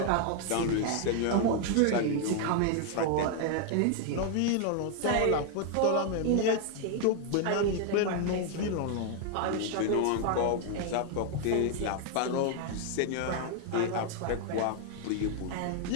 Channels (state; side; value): different; both; correlation 0.00